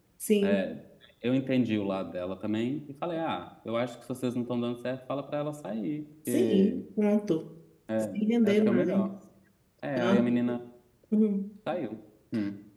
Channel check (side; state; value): both; identical; correlation 1.00